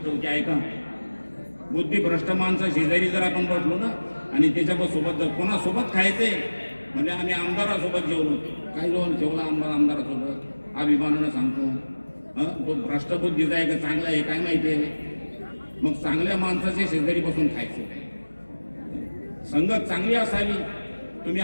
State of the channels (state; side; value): inverted; both; correlation -1.00